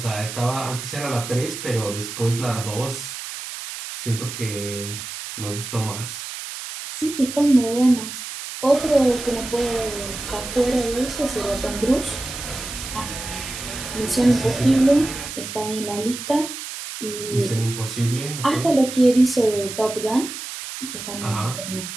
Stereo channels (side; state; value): right; noise; hiss, 9 dB below the sound